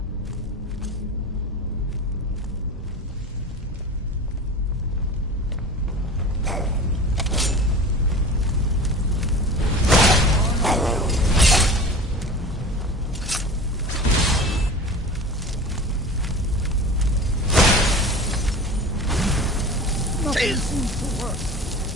Nothing seems to work.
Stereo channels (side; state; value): both; normal; correlation 0.35